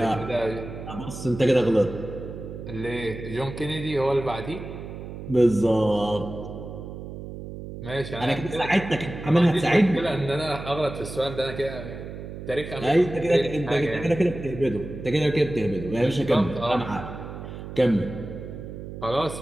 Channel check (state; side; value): noise; right; hum, 10 dB below the sound